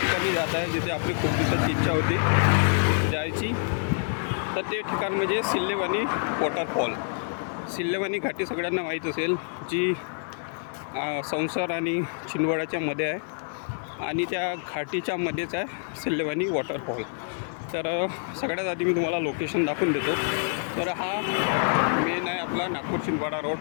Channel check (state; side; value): silent; right; 60 dB below the other